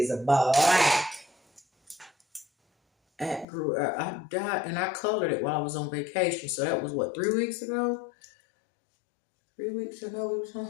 a black. I dyed and I colored it while I was on vacation. So that was what, 3 weeks ago? 3 weeks ago we was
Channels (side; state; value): right; drops out; at 3.5 s